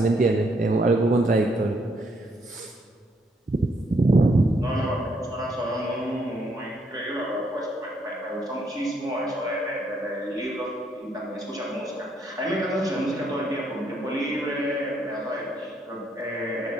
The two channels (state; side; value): normal; both; correlation 0.72